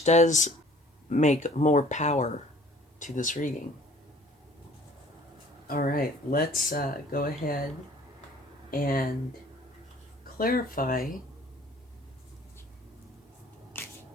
does make more power to this reading. All right, let's go ahead and clarify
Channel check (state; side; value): normal; both; correlation 0.53